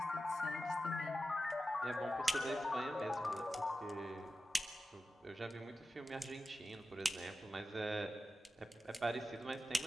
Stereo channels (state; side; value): normal; both; correlation 0.93